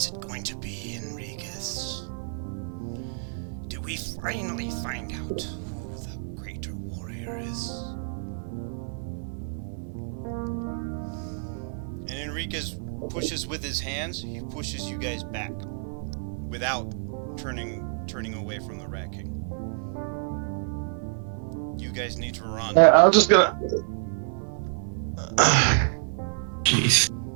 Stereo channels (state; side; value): silent; left; 59 dB below the other